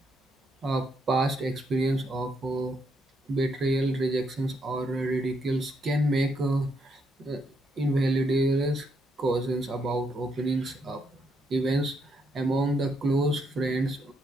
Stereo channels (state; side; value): normal; both; correlation 0.77